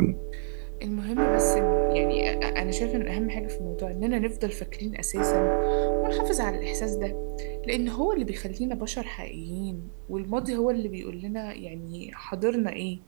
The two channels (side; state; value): left; silent; 55 dB below the other